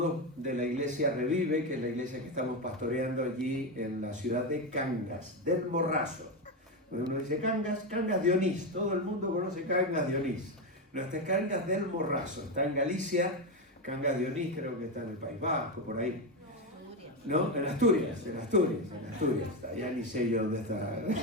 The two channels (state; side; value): normal; both; correlation 0.11